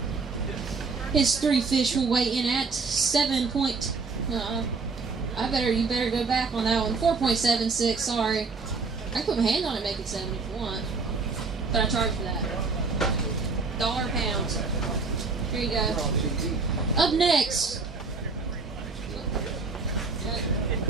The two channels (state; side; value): quieter; left; 4.4 dB